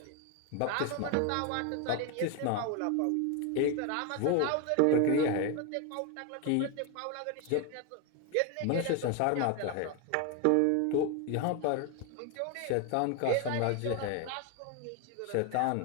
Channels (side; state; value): both; different; correlation 0.01